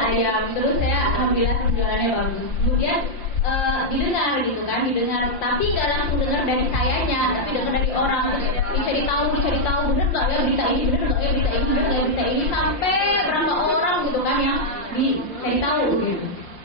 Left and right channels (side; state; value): right; late; 5.7 ms